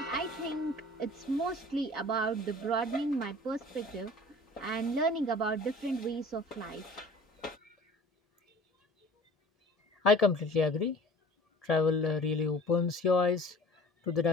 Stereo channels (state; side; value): normal; both; correlation 0.46